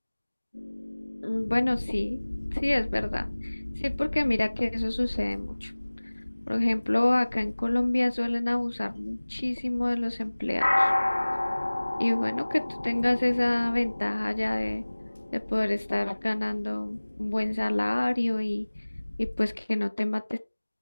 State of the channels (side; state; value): both; inverted; correlation -1.00